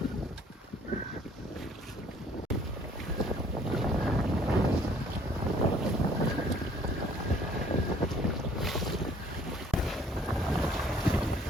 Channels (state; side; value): normal; both; correlation 0.59